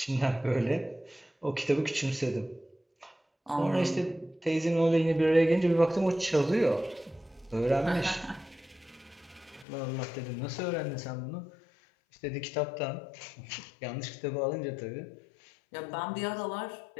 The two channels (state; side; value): drops out; right; at 9.7 s